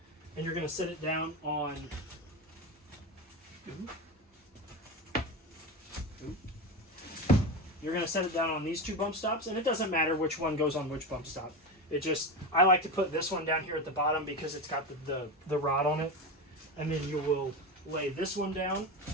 and you're going to set it down on you're going to set it down on these 2 bump stops, and it doesn't matter which one goes on which bump stop. I like to put this one down here at the bottom because it's got the rod on it, and then you will lay this one down,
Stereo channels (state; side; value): normal; both; correlation 0.21